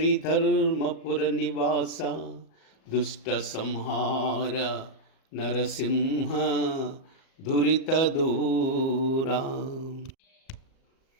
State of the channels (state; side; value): late; right; 38 ms